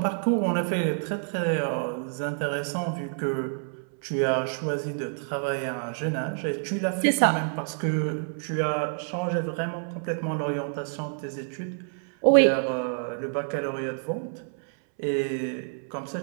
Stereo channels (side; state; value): left; silent; 60 dB below the other